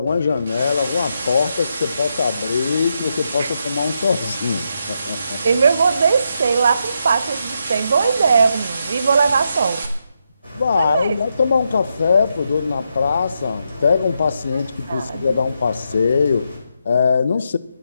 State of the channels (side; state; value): both; inverted; correlation -0.82